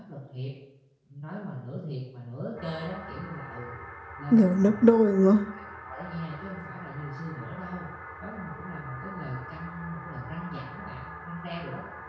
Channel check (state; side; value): identical; both; correlation 1.00